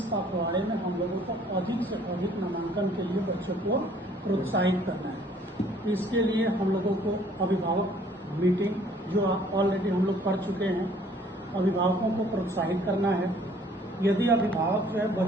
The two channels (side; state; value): both; normal; correlation 0.58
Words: पखवाड़े में हम लोगों को अधिक से अधिक नामांकन के लिए बच्चों को प्रोत्साहित करना है। इसके लिए हम लोगों को अभिभावक मीटिंग जो ऑलरेडी हम लोग कर चुके हैं, अभिभावकों को प्रोत्साहित करना है। यदि अभिभावक जो है